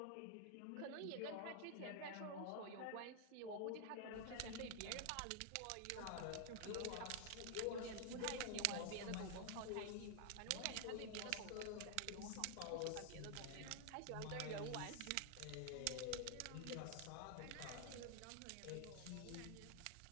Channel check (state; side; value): different; both; correlation 0.00